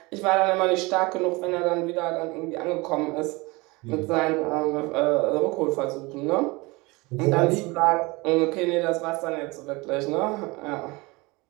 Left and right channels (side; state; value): left; quieter; 24.3 dB